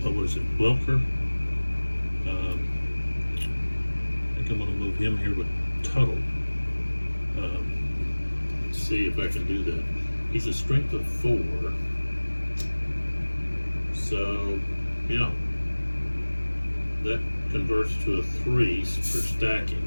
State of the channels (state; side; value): inverted; both; correlation -1.00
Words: what is it, Welker? I think I'm going to move him here with Tuttle. Let's see if I can do that. He's a strength of 4. So, yeah. That converts to a 3 for